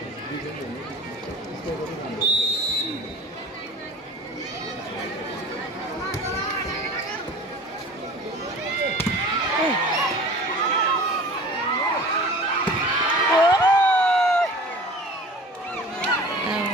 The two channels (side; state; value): both; normal; correlation 0.41